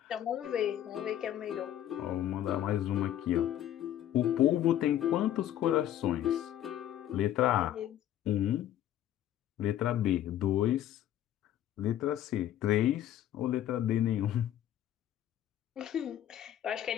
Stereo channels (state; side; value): quieter; right; 11.8 dB